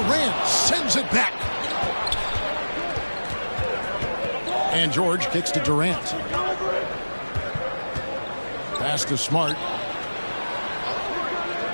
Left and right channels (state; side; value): inverted; both; correlation -1.00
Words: sends it back. And George kicks to Durant. Pass to Smart.